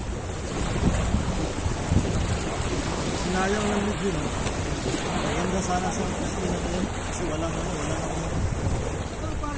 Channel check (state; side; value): identical; both; correlation 1.00